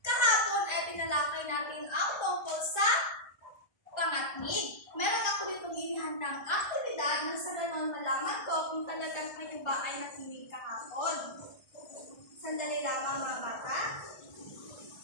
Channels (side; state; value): right; late; 1.3 ms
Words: Kahapon ay tinalakay natin ang tungkol sa pangatnig. Meron ako ditong inihandang aktibidad nang sa ganon malaman ko kung talagang kayo ba ay nakinig kahapon. Sandali lamang mga bata.